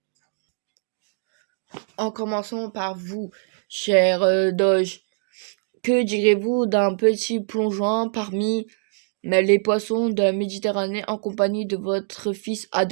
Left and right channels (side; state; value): left; silent; digital silence